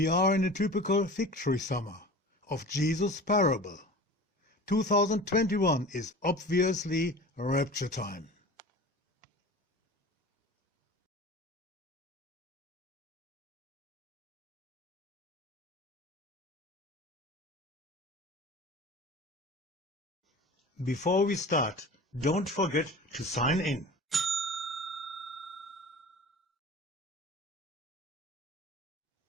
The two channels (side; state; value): both; normal; correlation 0.37